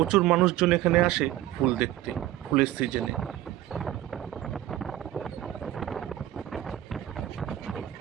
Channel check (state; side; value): quieter; left; 13.8 dB